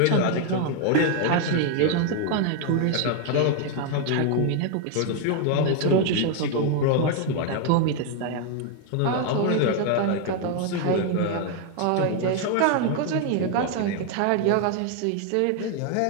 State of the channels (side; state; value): both; different; correlation 0.01